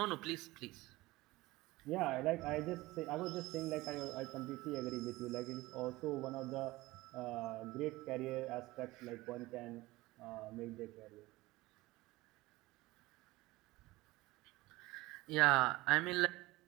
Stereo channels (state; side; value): quieter; left; 19.9 dB